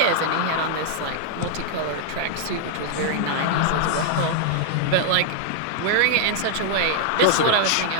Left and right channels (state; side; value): different; both; correlation 0.00